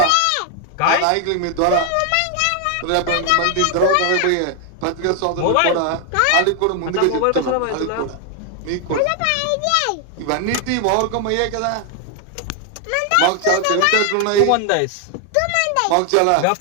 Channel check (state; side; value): different; both; correlation 0.00